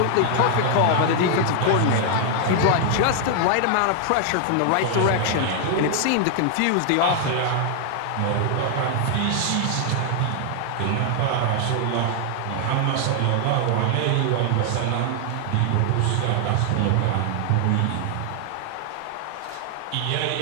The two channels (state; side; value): different; both; correlation 0.00